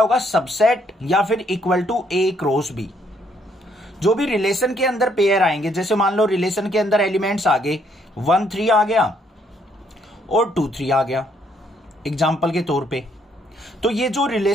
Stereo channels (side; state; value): both; normal; correlation 0.69